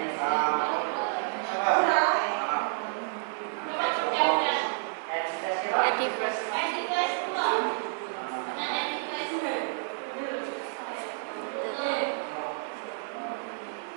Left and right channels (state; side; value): silent; left; 58 dB below the other